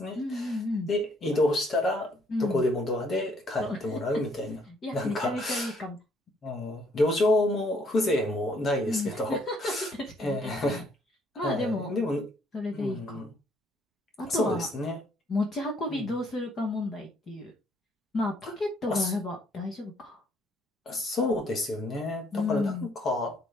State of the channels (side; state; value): both; normal; correlation 0.66